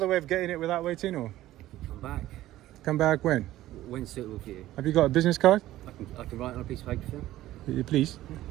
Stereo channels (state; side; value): quieter; left; 14.9 dB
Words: way of getting it without waiting, or Come back. come back when? When's suitable for you? Have you got a business card? I can write on a piece of paper for you. Please.